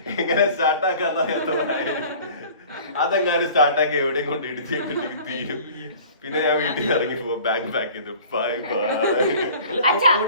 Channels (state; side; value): inverted; both; correlation -0.46